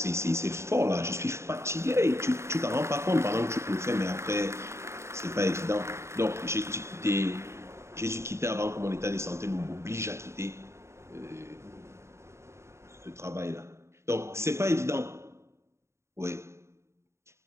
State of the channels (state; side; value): late; left; 0.13 ms